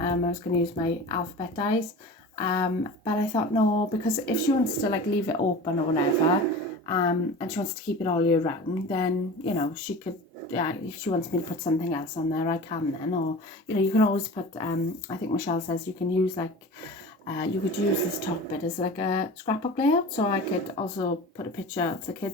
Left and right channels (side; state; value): both; normal; correlation 0.35